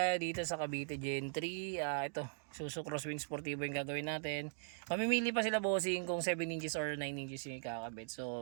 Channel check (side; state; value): left; silent; digital silence